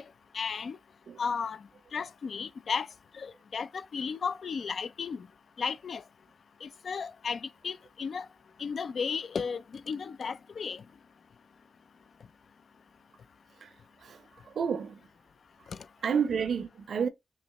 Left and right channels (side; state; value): both; normal; correlation 0.79